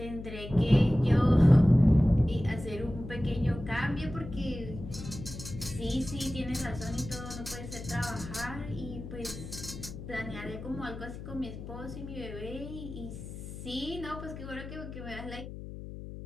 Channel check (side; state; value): left; noise; hum, 11 dB below the sound